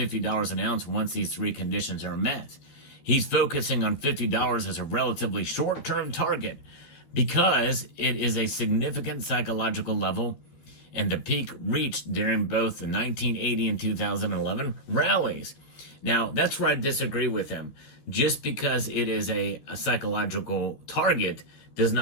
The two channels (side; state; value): right; late; 13 ms